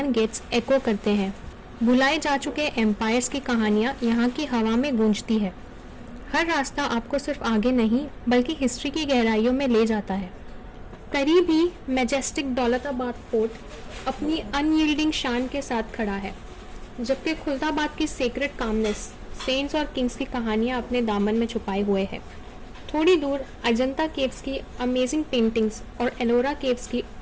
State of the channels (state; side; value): identical; both; correlation 1.00